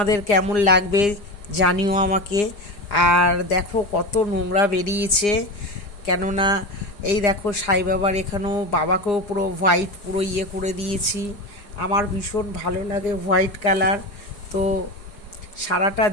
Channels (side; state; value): right; late; 4.9 ms